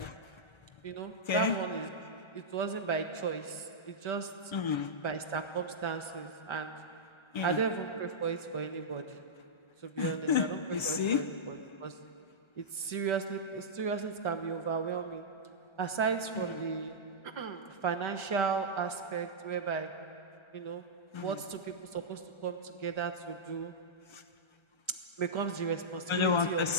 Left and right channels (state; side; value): late; right; 1.3 ms